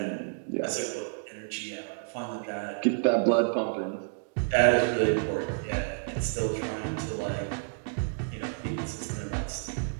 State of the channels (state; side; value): silent; left; digital silence